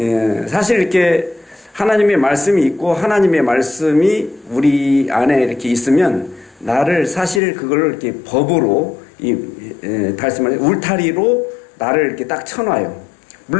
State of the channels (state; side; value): drops out; right; at 7.4 s